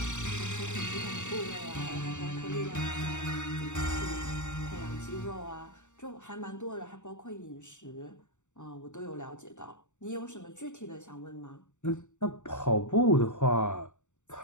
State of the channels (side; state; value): right; late; 0.84 ms